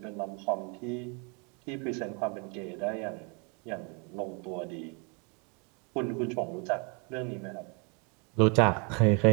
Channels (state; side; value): quieter; left; 33.8 dB